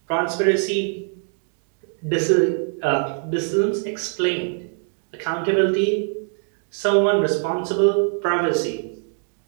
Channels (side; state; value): left; silent; 56 dB below the other